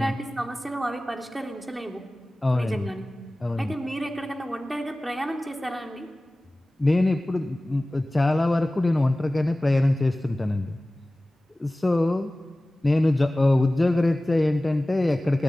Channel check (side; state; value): both; normal; correlation 0.98